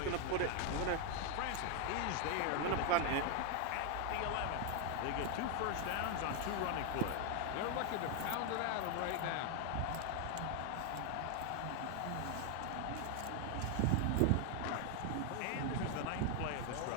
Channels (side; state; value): both; different; correlation 0.01